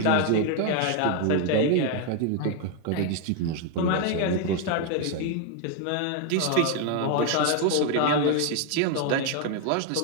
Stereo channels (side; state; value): both; different; correlation 0.00